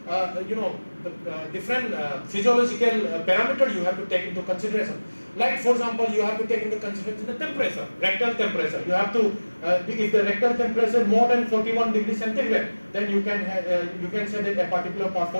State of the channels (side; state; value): both; inverted; correlation -1.00